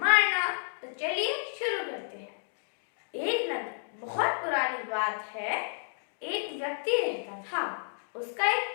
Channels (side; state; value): right; silent; digital silence